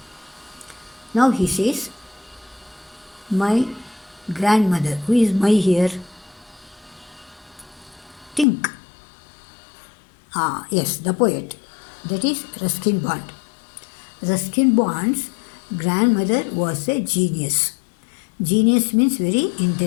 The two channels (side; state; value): right; drops out; at 8.5 s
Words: Now he says, my grandmother. Who is my here? Think. Yes, the poet. That is Ruskin Bond. Ruskin Bond's grandmother was a genius. Genius means very